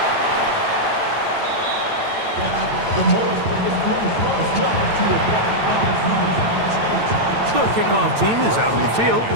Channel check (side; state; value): left; late; 9.0 ms